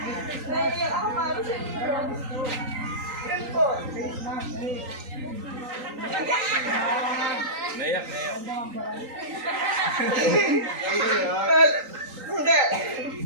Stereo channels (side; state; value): left; late; 3.8 ms